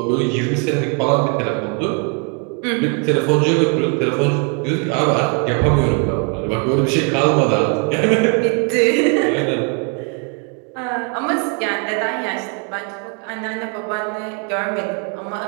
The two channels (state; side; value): quieter; left; 35.7 dB